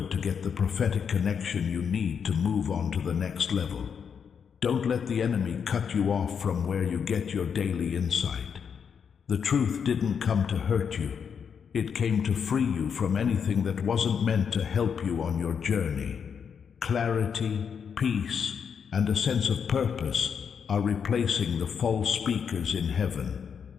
to get the prophetic connection you need to move on to the next level. Don't let the enemy cut you off from where you get your daily insight. The truth didn't come to hurt you. It came to free you from anything that wasn't meant to help you on your journey. Clarity, peace, and a sense of purpose are replacing the false speakers in heaven.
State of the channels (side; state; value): right; quieter; 6.9 dB